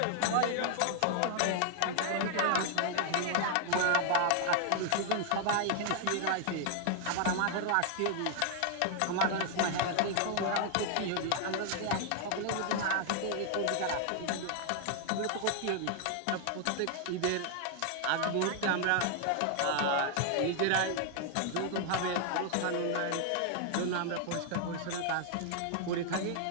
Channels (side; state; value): both; different; correlation 0.00